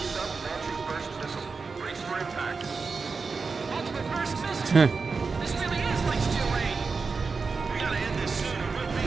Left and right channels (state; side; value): quieter; left; 4.7 dB